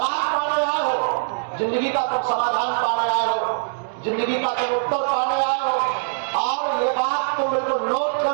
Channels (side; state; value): left; silent; digital silence